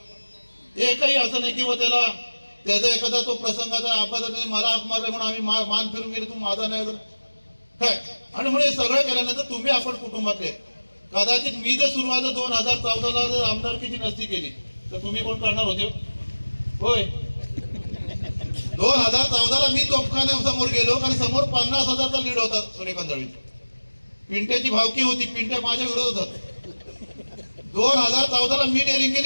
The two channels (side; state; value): both; inverted; correlation -1.00